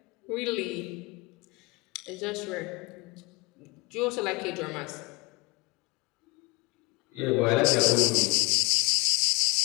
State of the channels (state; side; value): quieter; right; 26.2 dB